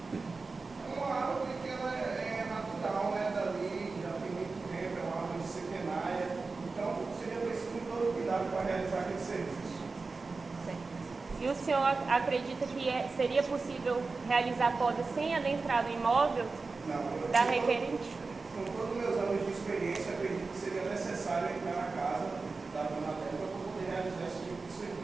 É uma árvore que ela é natural, né, dali, já tem muito tempo, é uma árvore centenária, então seria preciso todo cuidado para realizar aquele serviço. E o senhor acredita que seria possível realizar a poda sem adentrar no imóvel Não, da requerente? Com todos os meus anos de experiência, acredito que seria necessário entrar na casa da dona Débora para poder realizar esse tipo de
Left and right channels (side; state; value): left; quieter; 4.0 dB